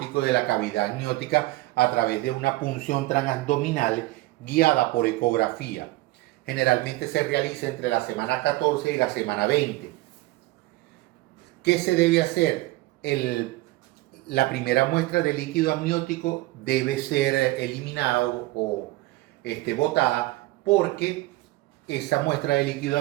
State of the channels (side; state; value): left; quieter; 19.0 dB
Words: de la cavidad amniótica a través de una punción transabdominal guiada por ecografía. Generalmente se realiza entre la semana 14 y la semana 20. ¿Qué se debe hacer? La primera muestra de líquido amniótico debe ser eliminado o botada, porque esa muestra de líquido